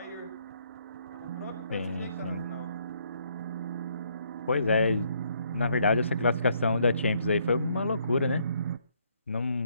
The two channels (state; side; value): inverted; both; correlation -0.70